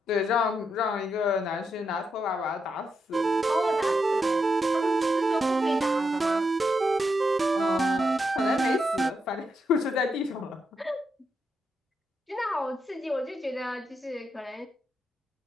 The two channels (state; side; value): normal; both; correlation 0.83